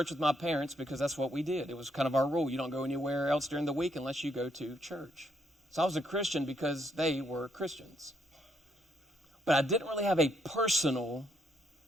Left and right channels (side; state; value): both; normal; correlation 0.73